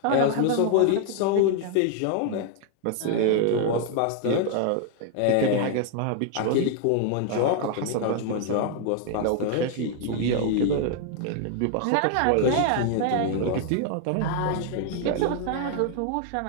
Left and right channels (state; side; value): different; both; correlation 0.00